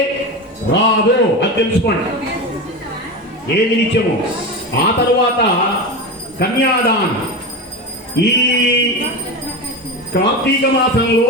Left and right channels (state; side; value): normal; both; correlation 0.22